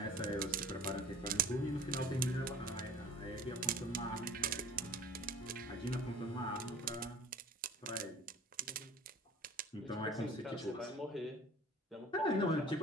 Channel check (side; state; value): both; normal; correlation 0.44